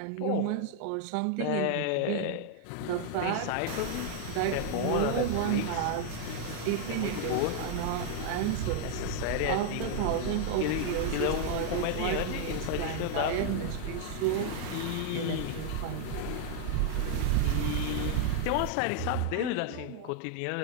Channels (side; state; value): both; different; correlation 0.00